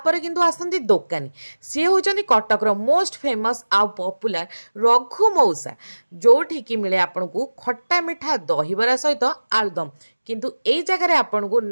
किंतु आसती दोकानी सी होचंदी कटक रो मोस्ट फेमस आ पॉपुलर रघु मौसा जोठी की मिले आपको खट्टा मिठा दहीबरा सहित आलुदम किंतु एई जगह आपन को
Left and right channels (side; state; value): both; inverted; correlation -1.00